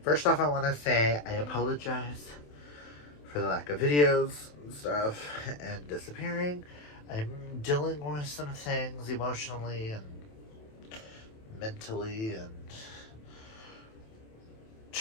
First off, I want to say I apologize for the lack of videos and stuff and disappearing. I'm dealing with some things emotionally and mentally and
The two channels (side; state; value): right; late; 27 ms